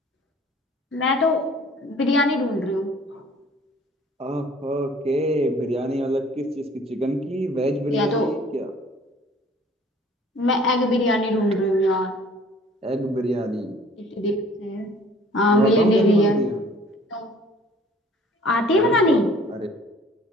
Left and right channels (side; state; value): both; normal; correlation 0.53